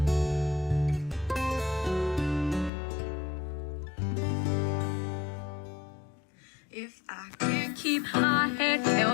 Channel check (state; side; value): drops out; right; at 2.7 s